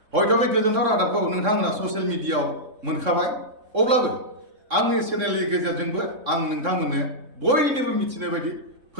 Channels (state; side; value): late; left; 3.6 ms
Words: हयथ' बे गोजोनथाव रादाबखौ नोंथांमोना ससियेल मिडियायाव मोनखाबाय, अब्लाबो आंनि चेनेलनि गेजेरजोंबो आं नोंथांमोननो बयनिबो मिथिनाय बायदि